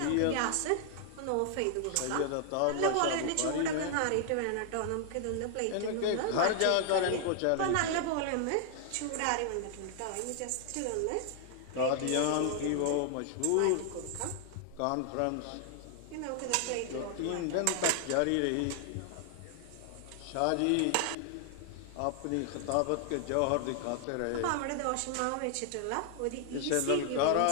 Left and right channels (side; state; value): both; different; correlation 0.00